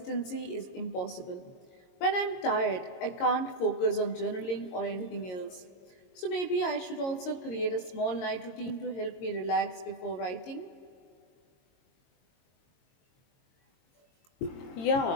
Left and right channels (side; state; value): right; late; 22 ms